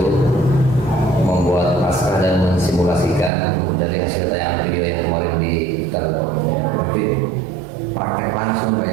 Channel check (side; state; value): left; drops out; at 3.3 s